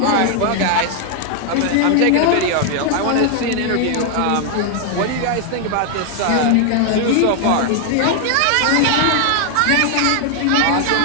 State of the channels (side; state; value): both; different; correlation 0.00